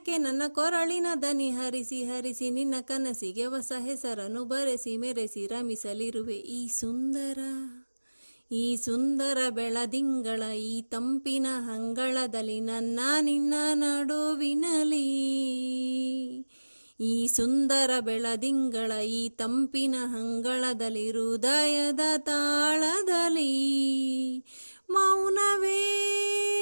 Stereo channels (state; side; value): inverted; both; correlation -1.00